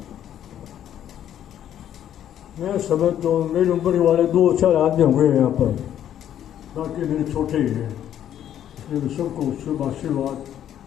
मैं समझ तो मेरी उम्र वाले 2-4 आदमी हुए हैं यहाँ पर, बाकी मेरे छोटे ही हैं, इसलिए मैं सबको शुभ आशीर्वाद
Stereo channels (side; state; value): right; quieter; 10.6 dB